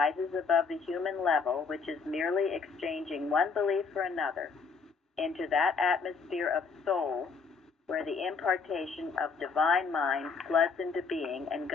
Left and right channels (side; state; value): right; quieter; 5.0 dB